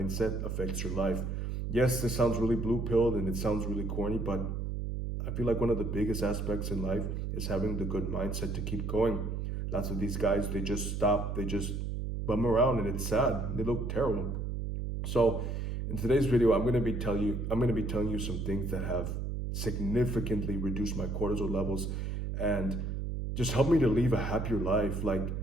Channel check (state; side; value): noise; right; hum, 3 dB below the sound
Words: affects your life. Yes, this sounds really blue pilled and it sounds really corny, but I feel like one of the biggest aspects in life is having the good mindset to keep going. Lots of these guys, they just stop, they just bum around and it's sad. They look terrible. So in today's video, I'm going to be telling you some things that have significantly reduced my cortisol levels and just help me to live a happier life. Like,